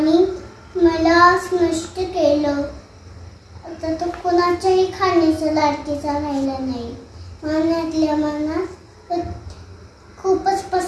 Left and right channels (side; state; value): both; identical; correlation 1.00